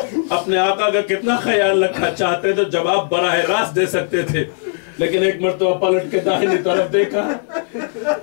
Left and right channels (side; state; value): right; silent; digital silence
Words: اپنے آقا کا کتنا خیال رکھا، چاہتے تو جواب براہ راست دے سکتے تھے، لیکن ایک مرتبہ پلٹ کے داہنی طرف دیکھا،